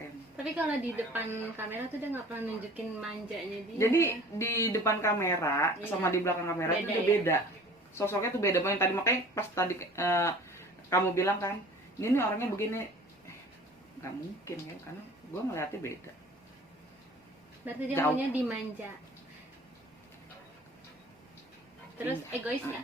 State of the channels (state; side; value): normal; both; correlation 0.46